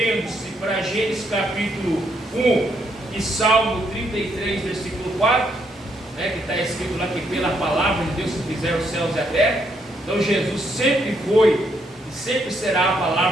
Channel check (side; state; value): both; normal; correlation 0.75